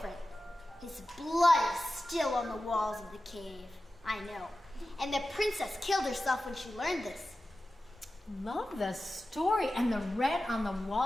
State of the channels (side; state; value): both; normal; correlation 0.94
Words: His blood is still on the walls of the cave. I know. And the princess killed herself when she learned this. Love the story and the red on the